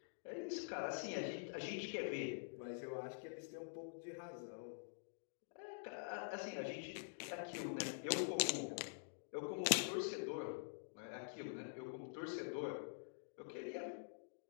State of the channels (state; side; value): silent; right; digital silence